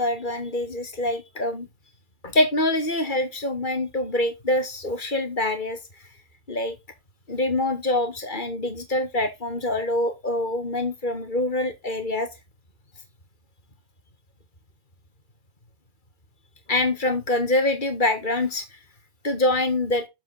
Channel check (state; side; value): late; right; 2.3 ms